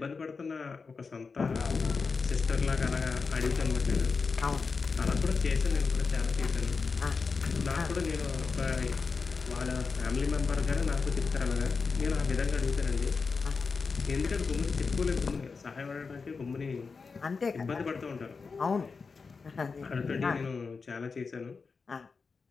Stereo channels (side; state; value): right; quieter; 4.8 dB